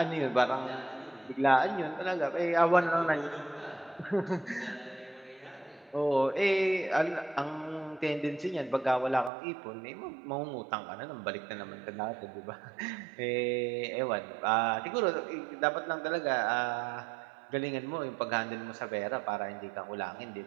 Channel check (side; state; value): left; drops out; at 9.3 s